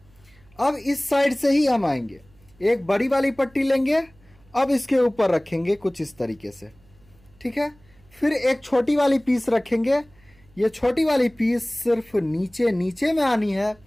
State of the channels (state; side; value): noise; right; hum, 30 dB below the sound